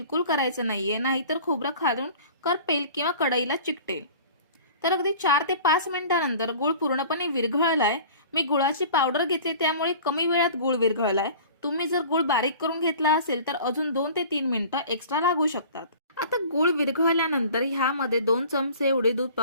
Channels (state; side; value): inverted; both; correlation -0.44